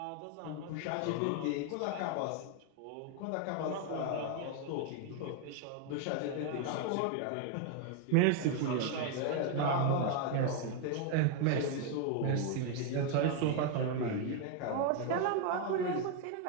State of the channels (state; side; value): different; both; correlation 0.01